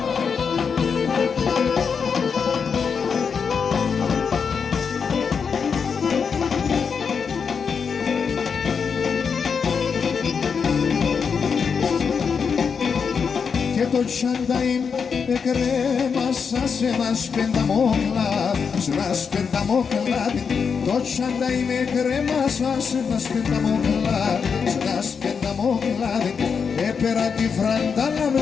Και το τσάνταιν εκρέμασα σε ένας πενταμόκλαδι, σε ένας πενταμόκλαδι. Το τσάνταιν εκρέμασα σε ένας πενταμόκλαδι, σε ένας πενταμόκλαδι. Έπερα τη φραντάλα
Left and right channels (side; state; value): right; quieter; 6.1 dB